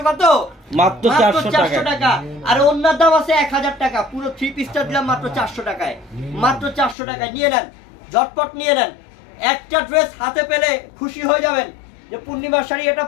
কত? মাত্র 400 টাকা। আর অন্যার দাম আছে 1000 টাকা। পুরো 3 পিসটা দিলাম মাত্র 400 টাকায়, মাত্র 400 টাকায়। নিয়ে নেন, ঝটপট নিয়ে নেন। একটা ড্রেস হাতে পেলে খুশি হয়ে যাবেন যে পূর্ণিমার শাড়ি এটা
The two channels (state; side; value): drops out; right; at 7.0 s